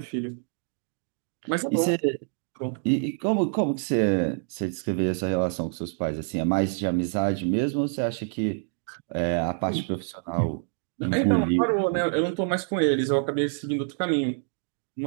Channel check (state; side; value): silent; left; digital silence